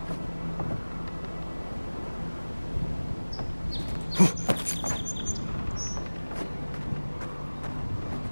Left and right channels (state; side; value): inverted; both; correlation -1.00